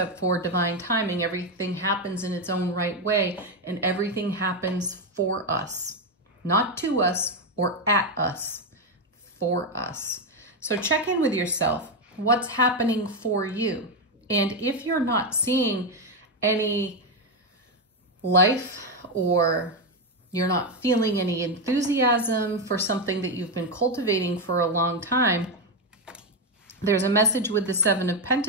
for divine timing. Everything happens in its own right way, and everything happens for us. Not to us or at us, for us. So check in with yourself. What's happening for you? And if you're not seeing any life, or you're not feeling any enthusiasm for something that you've been cultivating for a long time, there's a message with the Seven of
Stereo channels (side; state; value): both; normal; correlation 0.07